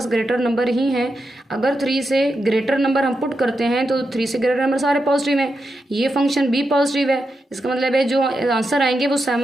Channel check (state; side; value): normal; both; correlation 0.87